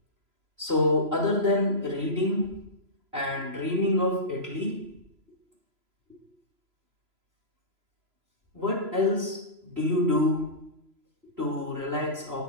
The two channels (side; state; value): left; late; 3.0 ms